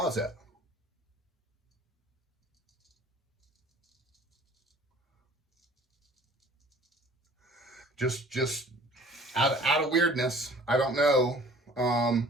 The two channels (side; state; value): both; normal; correlation 0.51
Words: Just out of weirdness. I don't know.